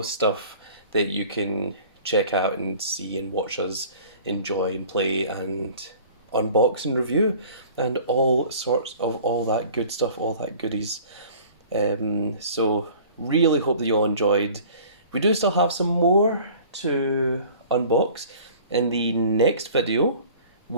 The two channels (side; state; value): both; inverted; correlation -0.47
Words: stuff that you can check out and see and watch us enjoy and play and unbox and review, and all sorts of all that good stuff, all that goodies. So really hope that you all enjoyed. We do still have some more to unbox. In the next video,